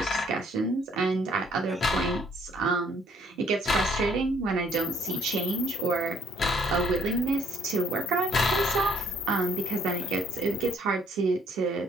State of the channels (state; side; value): normal; both; correlation 0.63